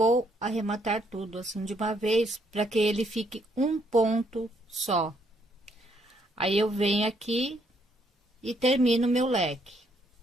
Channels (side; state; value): both; normal; correlation 0.71